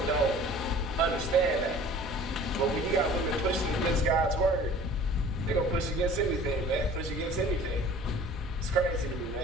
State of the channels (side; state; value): both; normal; correlation 0.46